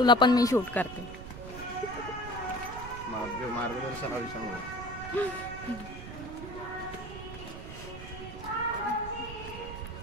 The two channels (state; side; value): noise; right; rumble, 11 dB below the sound